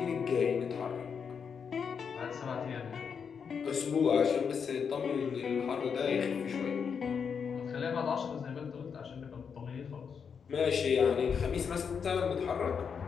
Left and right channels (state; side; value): quieter; right; 6.5 dB